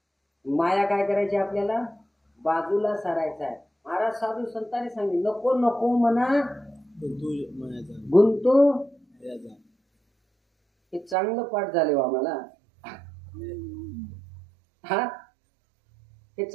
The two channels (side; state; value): left; drops out; at 11.2 s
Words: माया काय करायची आपल्याला? बाजूला सारायचं आहे. महाराज साधू संतांनी सांगितले नको नको म्हणा गुंतू. हे चांगलं पाठ झाले हो आम्हाला. हा हे